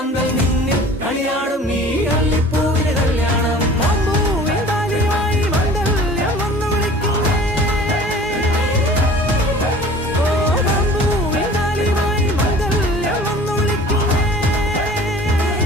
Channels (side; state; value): both; normal; correlation 0.45